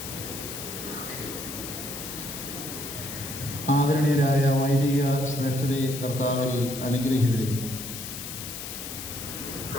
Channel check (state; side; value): noise; left; hiss, 8 dB below the sound